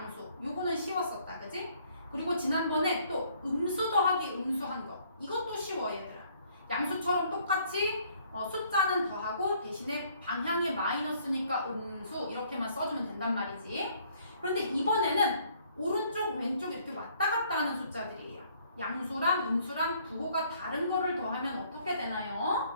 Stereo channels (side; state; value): both; inverted; correlation -0.63